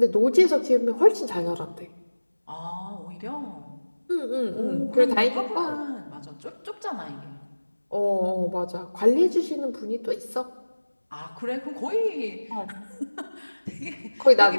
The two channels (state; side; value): inverted; both; correlation -1.00